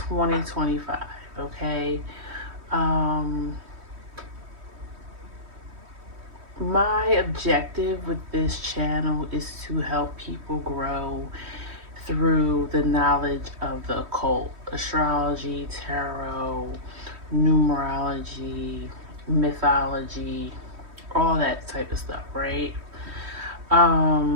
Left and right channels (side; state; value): left; late; 3.1 ms